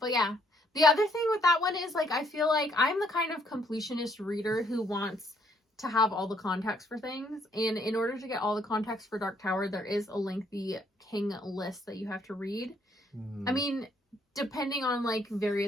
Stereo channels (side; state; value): both; normal; correlation 0.68